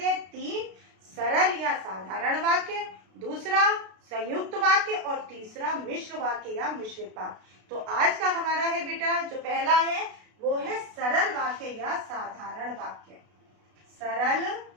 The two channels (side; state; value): left; late; 32 ms